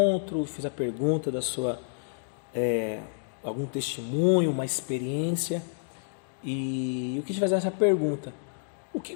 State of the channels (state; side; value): silent; right; digital silence